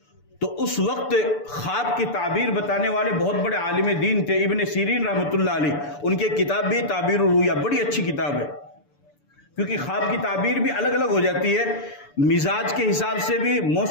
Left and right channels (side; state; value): right; late; 6.9 ms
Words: تو اس وقت خواب کی تعبیر بتانے والے بہت بڑے عالم دین تھے ابن سیرین رحمۃ اللہ علیہ. ان کی کتاب بھی تعبیر الرؤیا بڑی اچھی کتاب ہے، کیونکہ خواب کی تعبیر بھی الگ الگ ہو جاتی ہے، مزاج کے حساب سے بھی،